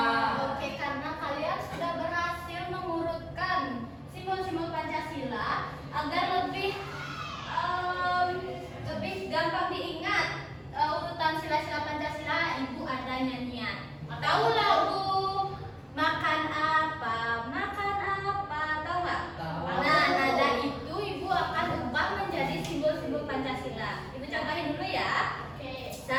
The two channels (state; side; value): identical; both; correlation 1.00